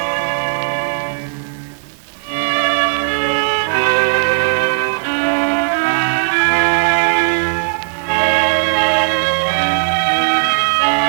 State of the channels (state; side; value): silent; left; digital silence